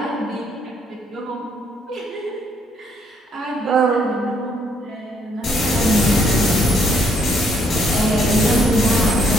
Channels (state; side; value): normal; both; correlation 0.70